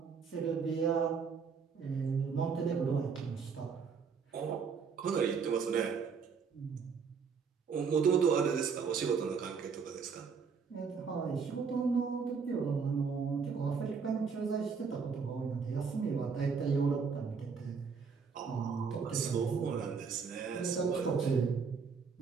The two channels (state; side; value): quieter; left; 5.8 dB